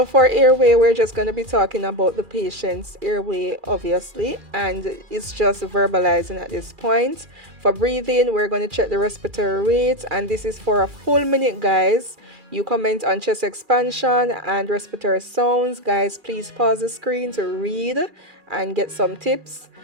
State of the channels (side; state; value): left; late; 2.4 ms